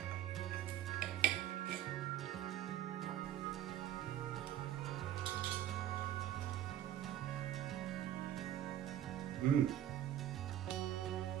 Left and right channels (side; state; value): left; quieter; 11.7 dB